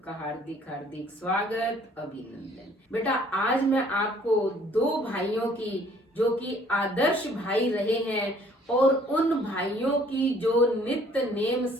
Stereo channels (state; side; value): normal; both; correlation 0.59